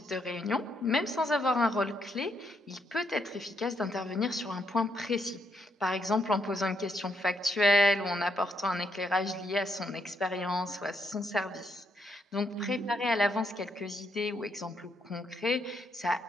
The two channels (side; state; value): both; normal; correlation 0.76